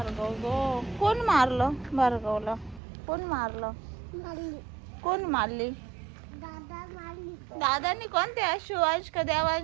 गो, कोण मारलं भार्गवला? कोण मारलं? कोण मारली? दादानी. कोणत्या? शिवांश का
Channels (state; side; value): drops out; left; at 2.8 s